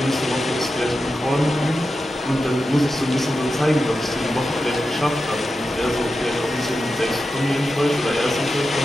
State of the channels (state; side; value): normal; both; correlation 0.90